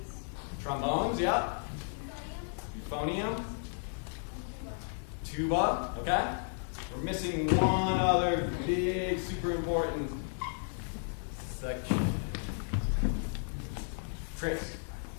Trombones, yeah. Euphonium. Tuba, okay. We're missing one other big, super important section. Chris.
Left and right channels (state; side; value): silent; right; 55 dB below the other